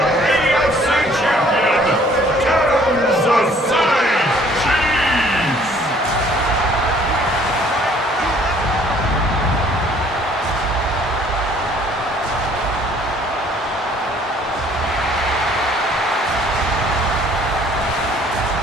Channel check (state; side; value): normal; both; correlation 0.58